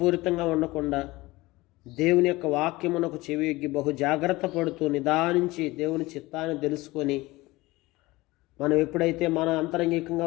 ఉండకుండా, దేవుని యొక్క వాక్యమునకు చెవియొగ్గి బహు జాగ్రత్త పడుతూ నిదానించి దేవుని చిత్తాన్ని తెలుసుకొని, మనం ఎప్పుడైతే మన అంతరంగికంగా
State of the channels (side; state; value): right; quieter; 20.4 dB